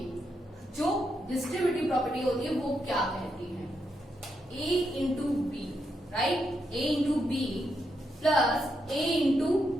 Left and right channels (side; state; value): both; normal; correlation 0.82